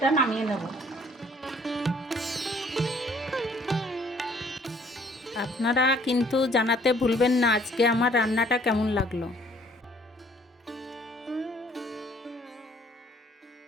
নামিয়ে নেব। আপনারা কিন্তু জানাতে ভুলবেন না আজকে আমার রান্নাটা কেমন লাগলো।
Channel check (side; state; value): both; normal; correlation 0.60